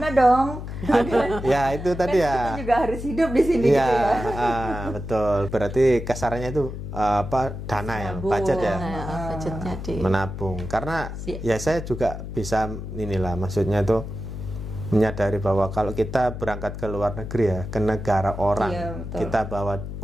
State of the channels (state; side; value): noise; left; hum, 8 dB below the sound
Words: dong? Ya itu tadi Kita ya. juga harus hidup di sini Iya, gitu ya. betul. Berarti kasarannya itu dana ya, budget ya. budgetnya di Menabung, karena ya saya juga bisa inilah, maksudnya itu menyadari bahwa kalau kita berangkat ke luar negeri ya, ke negara orang, Iya, betul. kita bawa